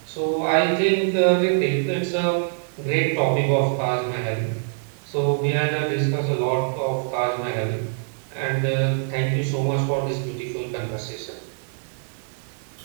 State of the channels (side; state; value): left; silent; digital silence